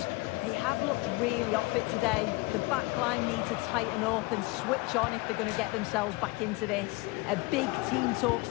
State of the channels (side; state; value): right; quieter; 23.3 dB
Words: They have looked really off it today. The back line need to tighten up and switch on if they're going to get themselves back into this. A big team